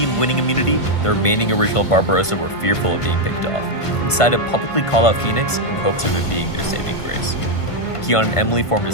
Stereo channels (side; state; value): right; late; 1.5 ms